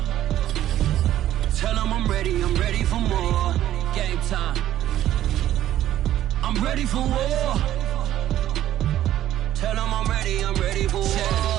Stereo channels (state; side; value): quieter; left; 12.6 dB